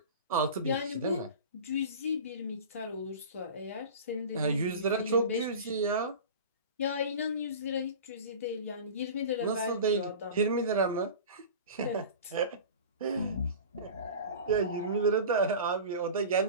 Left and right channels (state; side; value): inverted; both; correlation -0.34